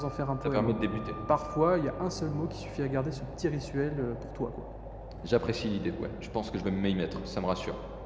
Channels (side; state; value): both; identical; correlation 1.00